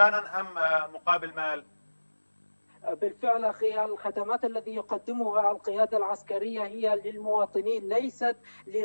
أم مقابل مال؟ بالفعل أخي، الخدمات التي يقدمها القيادة العسكرية هي للمواطنين ليست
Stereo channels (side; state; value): both; inverted; correlation -1.00